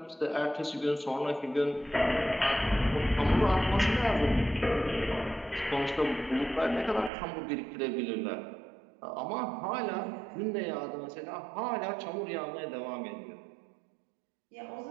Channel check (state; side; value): drops out; left; at 7.1 s